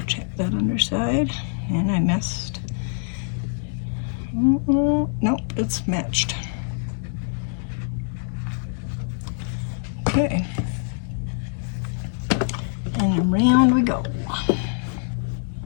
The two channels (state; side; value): silent; right; digital silence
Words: Check that underside, and I messed. Nope, it's matched. Okay. And around we go.